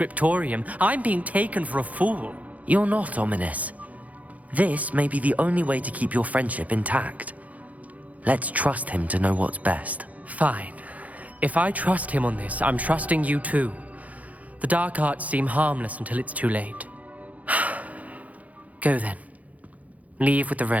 I'm being taken for a fool. You're not, Ominous. This may be the only way to keep your friendship intact. Let's trust him to know what's best. Fine. If I trust him on this, I'm trusting you too. The dark arts seem harmless until it's too late. Go then. Leave with the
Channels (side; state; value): left; late; 0.072 ms